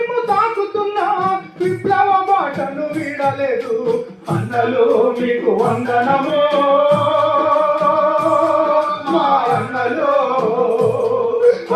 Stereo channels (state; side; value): identical; both; correlation 1.00